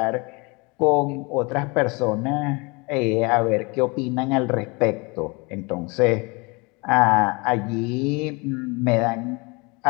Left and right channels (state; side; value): quieter; right; 28.1 dB